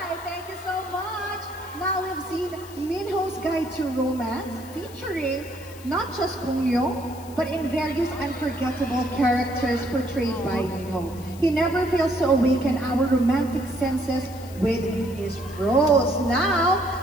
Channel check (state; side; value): noise; left; hiss, 20 dB below the sound